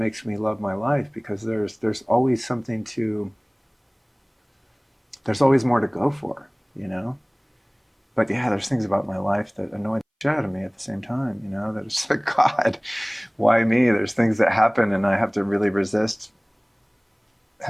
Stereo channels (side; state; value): both; identical; correlation 1.00